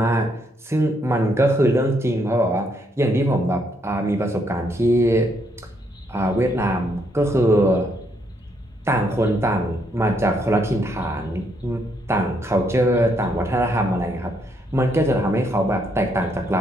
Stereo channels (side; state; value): both; normal; correlation 0.74